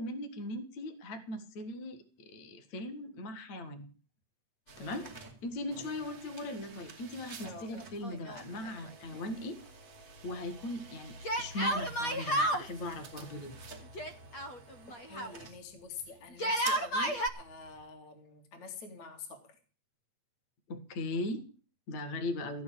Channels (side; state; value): right; late; 8.4 ms